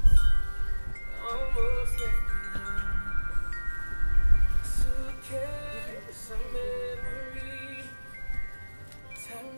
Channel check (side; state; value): both; inverted; correlation -1.00